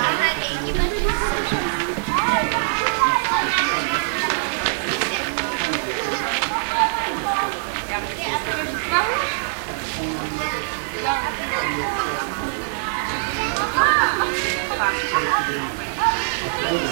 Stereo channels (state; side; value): silent; left; digital silence